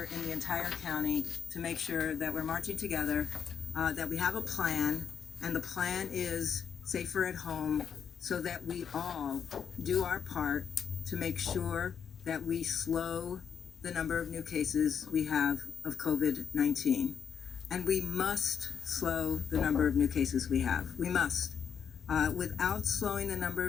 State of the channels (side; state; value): right; quieter; 7.5 dB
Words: in the entire county to make sure that we're marching together, that we have a plan, and the plan is safer at home, so that we all do our part to make sure that we slow the number of new cases we have of COVID-19. And we must slow the number of new cases we have. We must. Without slowing the number